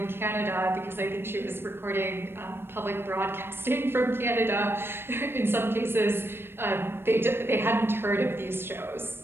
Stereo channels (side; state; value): left; late; 0.11 ms